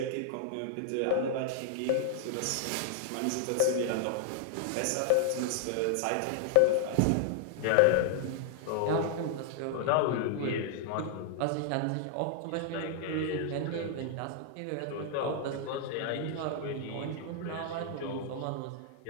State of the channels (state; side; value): different; both; correlation 0.00